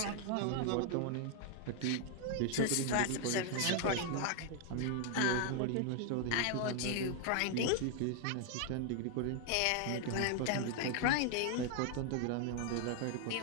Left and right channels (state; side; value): different; both; correlation 0.00